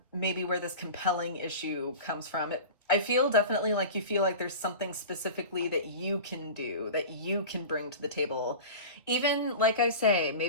maybe where this compelling issue comes from. I feel definitely like you feel like there's something specifically that you can do, that you can bring to the table. Even, like I say,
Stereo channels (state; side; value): inverted; both; correlation -0.33